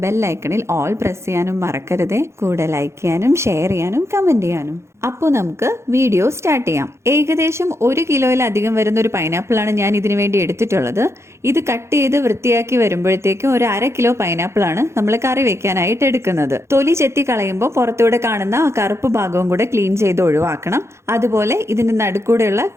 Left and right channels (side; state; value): left; late; 0.13 ms